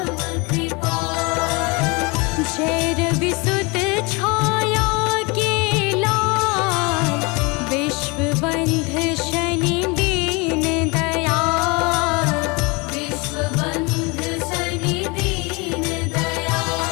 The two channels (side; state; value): right; quieter; 27.6 dB